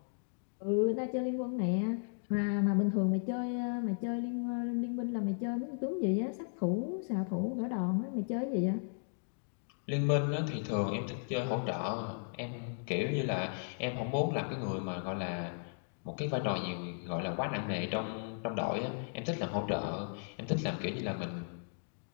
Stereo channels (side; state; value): right; silent; digital silence